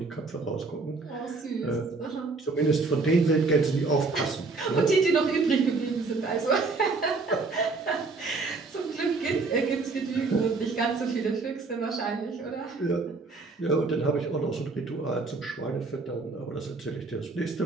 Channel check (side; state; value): left; quieter; 3.9 dB